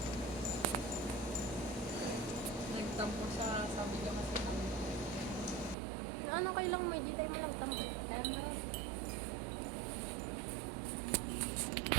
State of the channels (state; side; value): drops out; left; at 5.8 s